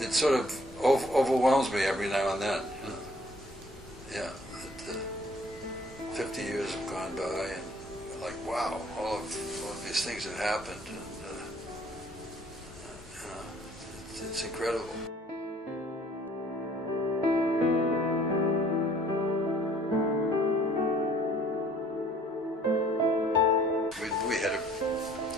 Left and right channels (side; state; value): both; normal; correlation 0.57